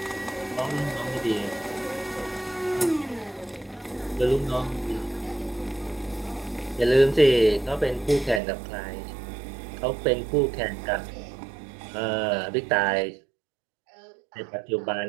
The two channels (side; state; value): left; drops out; at 8.4 s